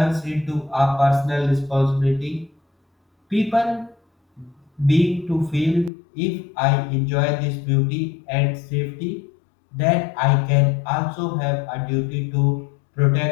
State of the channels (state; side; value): drops out; right; at 5.9 s